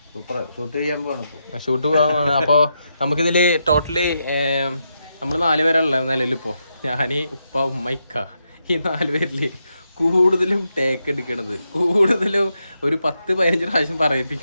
ഷൂട്ട് പോകാൻ. അപ്പോൾ നമുക്കിതിൽ ടോട്ടലി നമ്മൾ 4 പേരല്ല നിലവിലിപ്പോൾ. ഞാൻ, ഉപ്പ, ഉമ്മ, ഇക്ക, ഈ 4 പേരിൽ കൂടുതലും ടേക്ക് എടുക്കണത്, കൂടുതലും ഒരു 10-15 പ്രാവശ്യം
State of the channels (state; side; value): inverted; both; correlation -0.83